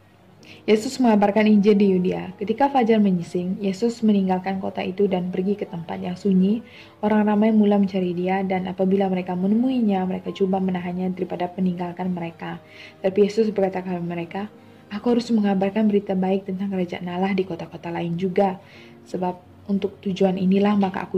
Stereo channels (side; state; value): both; identical; correlation 1.00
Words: Yesus mengabarkan Injil di Yudea. Ketika fajar menyising, Yesus meninggalkan kota itu dan pergi ke tempat yang sunyi. Orang ramai mula mencari dia, dan apabila mereka menemuinya, mereka coba menahannya daripada meninggalkan mereka. Tapi Yesus berkata kepada mereka, aku harus mengabarkan berita baik tentang kerajaan Allah di kota-kota lain juga. Sebab untuk tujuan inilah maka aku